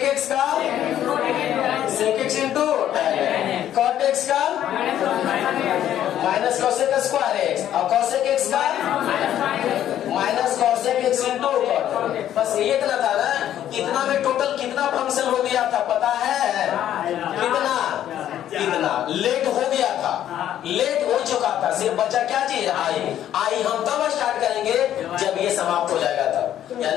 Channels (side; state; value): right; quieter; 11.3 dB